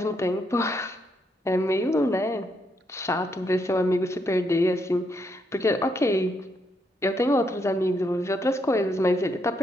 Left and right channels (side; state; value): both; normal; correlation 0.77